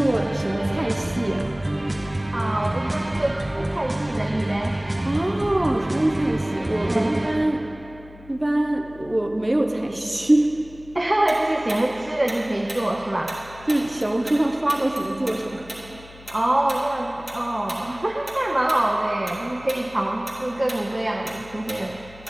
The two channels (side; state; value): left; noise; hum, 20 dB below the sound